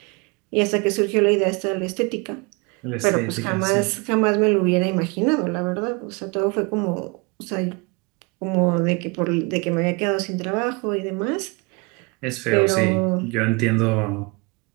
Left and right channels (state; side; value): quieter; left; 29.4 dB